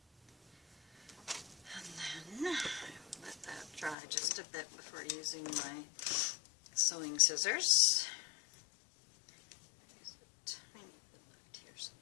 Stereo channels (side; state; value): right; drops out; at 4.0 s